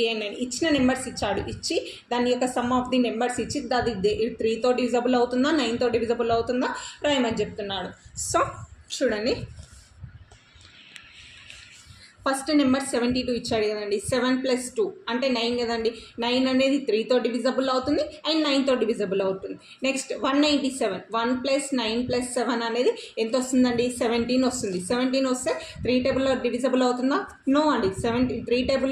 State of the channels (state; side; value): identical; both; correlation 1.00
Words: and 9. ఇచ్చిన నెంబర్స్ ఇచ్చి దాని యొక్క సమ్ ఆఫ్ ది నెంబర్స్ ఇచ్చి అది 3తో డివిజబుల్ అవుతుందా 9తో డివిజబుల్ అవుతుందా రాయమని చెప్తున్నాడు. సో చూడండి, ఫస్ట్ నెంబర్ 72 ఇచ్చాడు కదండి. 7 + 2 అంటే 9 కదండి. 9 అనేది 3తో డివిజబుల్ అవుతుంది అండ్ 9తో డివిజబుల్ అవుతుంది. నెక్స్ట్ 197, 1 + 9 + 7 అనేది ఎంత వస్తుందండి? 17 వస్తుంది. 17 వస్తే 3 టేబుల్లో డివిజబుల్ అవుతుందా? నో అండి. 3